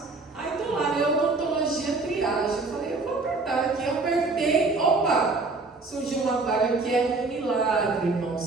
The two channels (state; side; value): quieter; left; 3.7 dB